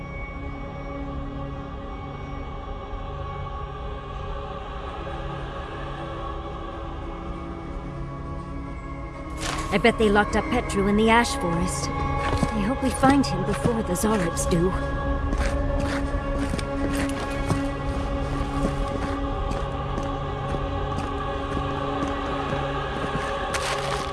I bet they locked up Petru in the Ash Forest. I hope we find him before the Zoribs do.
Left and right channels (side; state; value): both; identical; correlation 1.00